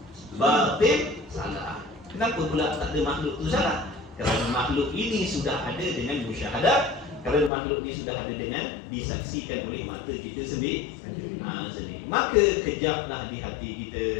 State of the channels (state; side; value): drops out; right; at 7.5 s